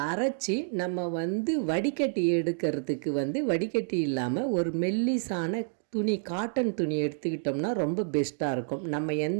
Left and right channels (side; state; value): left; silent; digital silence